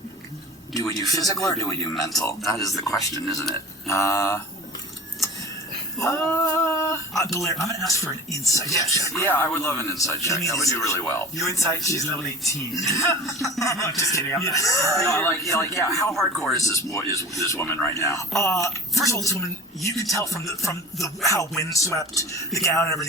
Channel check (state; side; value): normal; both; correlation 0.37